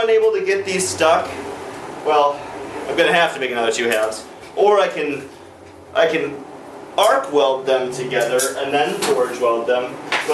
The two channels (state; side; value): identical; both; correlation 1.00